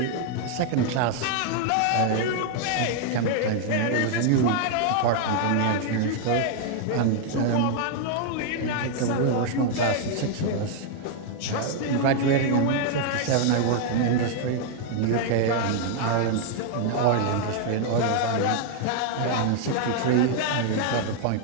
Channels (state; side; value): different; both; correlation 0.00